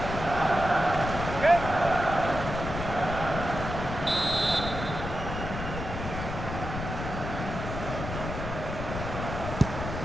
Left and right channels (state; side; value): noise; left; rumble, 6 dB below the sound